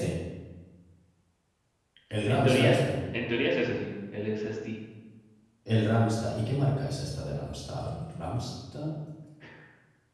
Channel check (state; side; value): identical; both; correlation 1.00